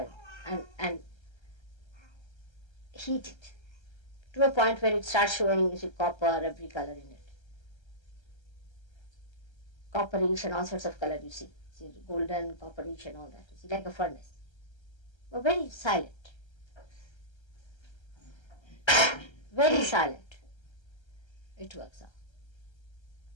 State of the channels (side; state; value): right; late; 1.3 ms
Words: and heat it to a point where it starts showing you see copper, every color in it. Copperish and all sorts of color you see. See golden, copperish and all that. You see like a furnace. But very silent. Very silent. It works out.